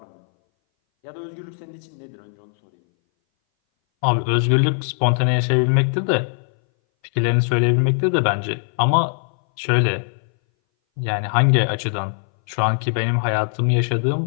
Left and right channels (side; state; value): right; silent; 61 dB below the other